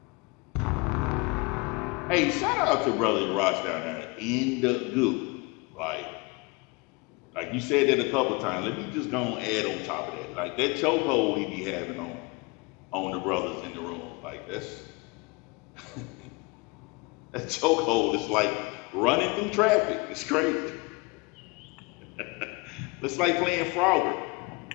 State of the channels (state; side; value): quieter; right; 27.5 dB